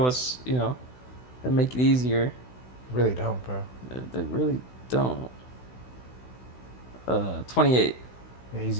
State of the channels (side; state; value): right; late; 16 ms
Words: us, and make it easier. Really don't, bro. They really don't. 28. Yeah, he's